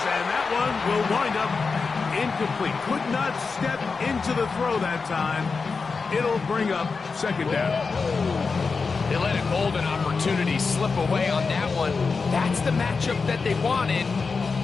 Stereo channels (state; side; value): quieter; right; 4.7 dB